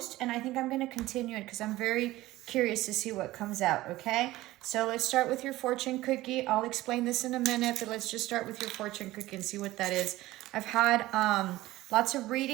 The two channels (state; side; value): quieter; left; 17.2 dB